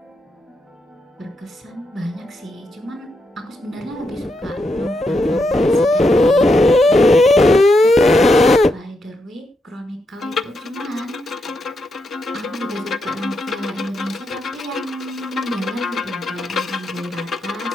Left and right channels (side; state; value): both; normal; correlation 0.82